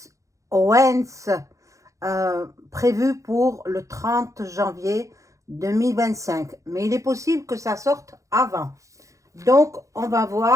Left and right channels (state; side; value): late; left; 0.15 ms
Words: Owens, prévues pour le 30 janvier 2025. Mais il est possible que ça sorte avant. Donc, on va